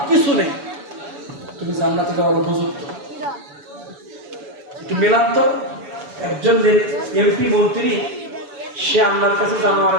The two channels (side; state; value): left; late; 7.0 ms